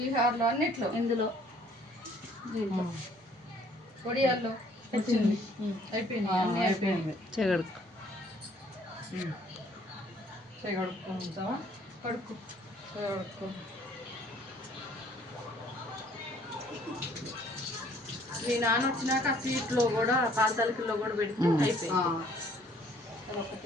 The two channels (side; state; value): both; normal; correlation 0.60